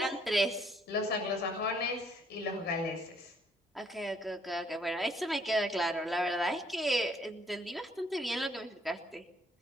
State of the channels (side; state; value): both; normal; correlation 0.66